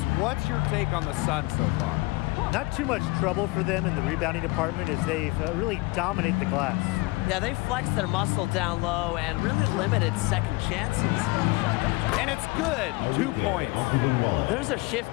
what's your take on the Sun so far? Not too much trouble for them in the rebounding department as they've really dominated the glass. Yeah, they flexed their muscle down low and really limited second chances. And it's good. 2 points. There's a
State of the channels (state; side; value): quieter; right; 23.3 dB